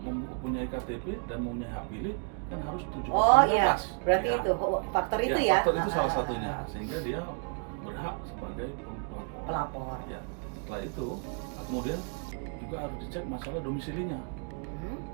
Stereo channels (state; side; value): quieter; left; 38.7 dB